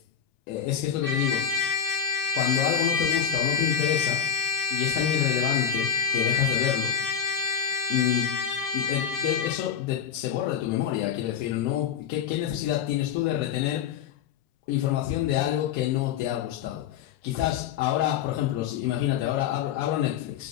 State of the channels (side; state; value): right; quieter; 8.1 dB